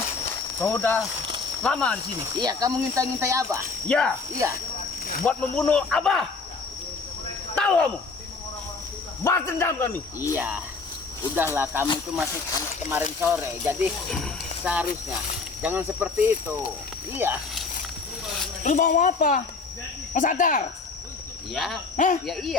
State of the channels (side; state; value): right; quieter; 4.3 dB